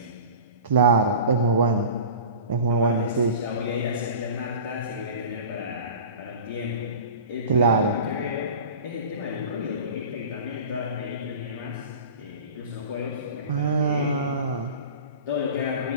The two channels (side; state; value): both; inverted; correlation -0.37